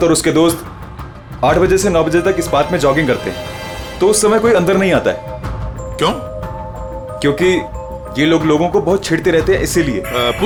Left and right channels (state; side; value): identical; both; correlation 1.00